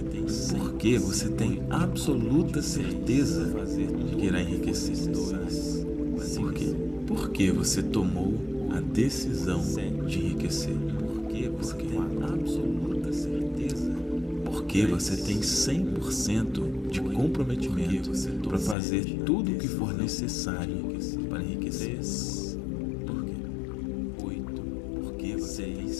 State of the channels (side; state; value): right; drops out; at 18.8 s